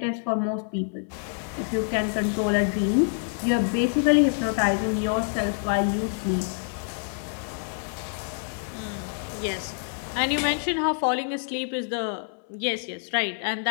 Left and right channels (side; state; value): right; silent; 60 dB below the other